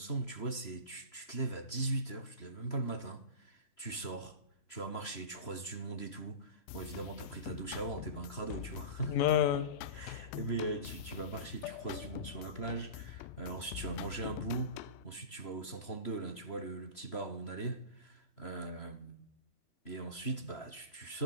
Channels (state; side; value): late; right; 3.0 ms